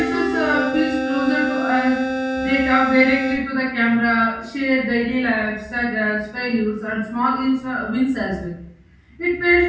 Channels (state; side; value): identical; both; correlation 1.00